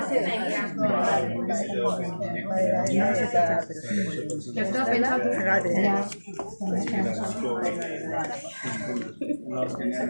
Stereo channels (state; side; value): inverted; both; correlation -1.00